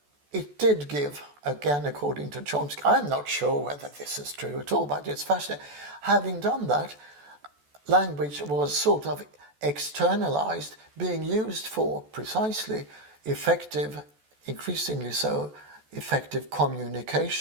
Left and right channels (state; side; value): late; left; 14 ms